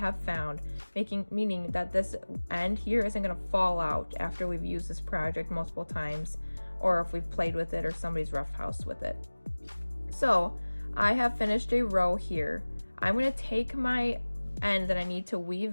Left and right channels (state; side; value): inverted; both; correlation -1.00